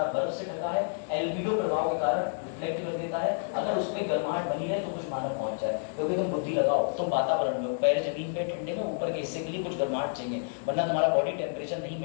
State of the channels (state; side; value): silent; right; 58 dB below the other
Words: बर्फ से ढका है, एल्बिडो प्रभाव के कारण रिफ्लेक्ट कर देता है। अगर उस पे गर्माहट बनी रहे तो कुछ मानव पहुंच जाए। क्योंकि तुम बुद्धि लगाओ, तुम वातावरण में पैर जमीन पे ठंडे में, ऊपर के हिस्से के लिए कुछ गर्माहट चाहिए, वरना तुम्हारा बॉडी टेम्परेचर नहीं